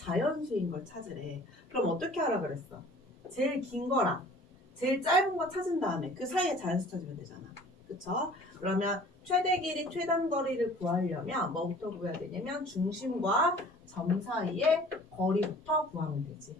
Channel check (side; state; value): both; normal; correlation 0.49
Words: 걸 찾으래. 그럼 어떻게 하라 그랬어? 제일 긴 거랑 제일 짧은 거 찾은 다음에 그 사이에 자연수 찾으면 되잖아. 그쵸? 그러면 최대 길이 최단 거리를 구하려면 뭐부터 구해야 되냐면 중심과 점 사이의 거리부터 구하면 되지.